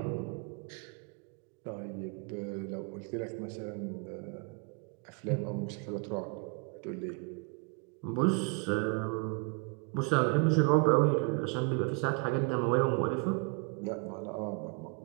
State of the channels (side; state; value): left; quieter; 33.7 dB